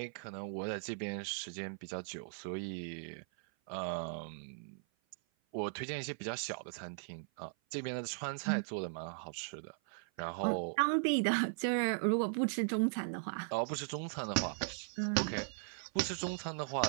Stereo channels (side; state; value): left; silent; 52 dB below the other